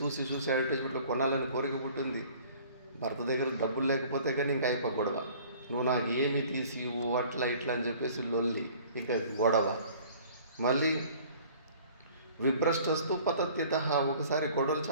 అడ్వర్టైజ్మెంట్లో కొనాలని కోరిక పుట్టింది. భర్త దగ్గర డబ్బులు లేకపోతే కానీ ఇంకా అయిపో గొడవ. నువ్వు నాకు ఏమి తీసి అట్లా ఇట్లా అని చెప్పేసి లొల్లి, ఇంకా గొడవ. మళ్ళీ విభ్రష్టస్తు పతత్యదః, ఒకసారి గొడవలు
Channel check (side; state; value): both; inverted; correlation -0.50